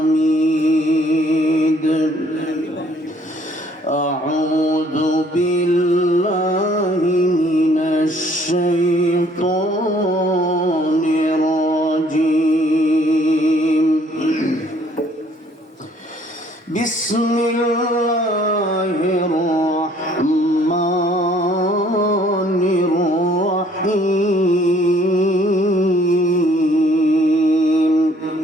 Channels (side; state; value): both; normal; correlation 0.61